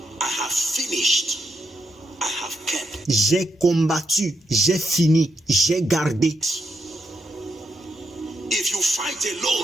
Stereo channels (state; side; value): normal; both; correlation 0.80